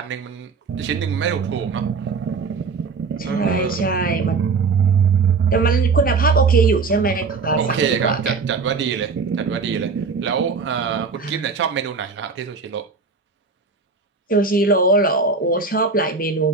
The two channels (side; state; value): left; quieter; 4.7 dB